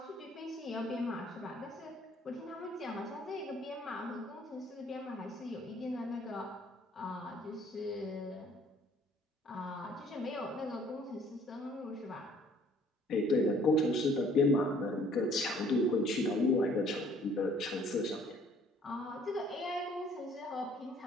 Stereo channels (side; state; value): both; normal; correlation 0.58